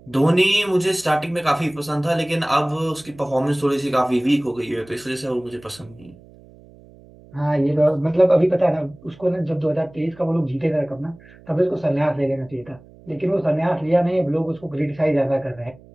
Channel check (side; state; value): right; noise; hum, 24 dB below the sound